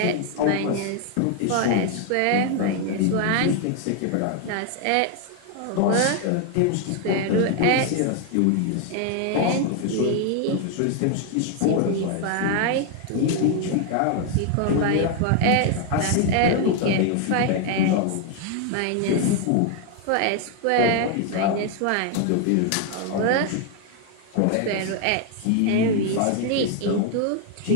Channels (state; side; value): different; both; correlation 0.00